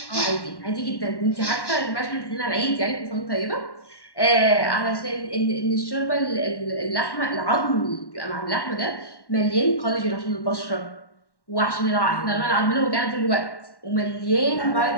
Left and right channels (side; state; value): right; late; 1.1 ms